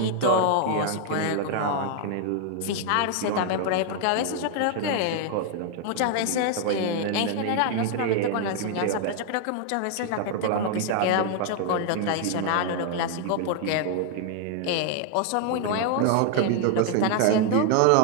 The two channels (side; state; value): both; different; correlation 0.00